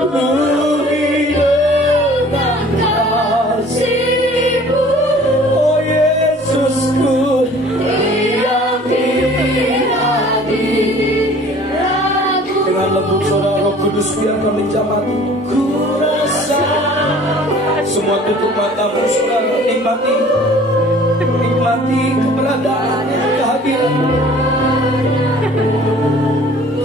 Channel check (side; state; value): both; normal; correlation 0.50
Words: Semua tutup matamu, saudara. Nikmati keberadaan, kehadiran